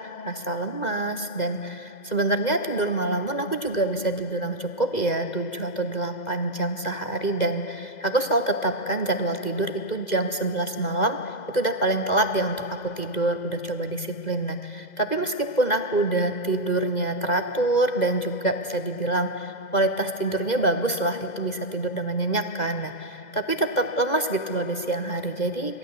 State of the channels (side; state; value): right; late; 2.0 ms